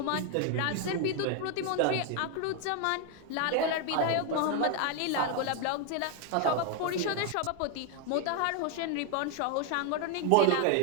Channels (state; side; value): different; both; correlation 0.01